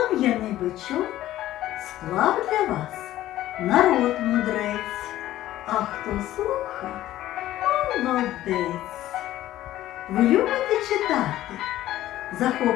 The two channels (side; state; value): right; quieter; 14.2 dB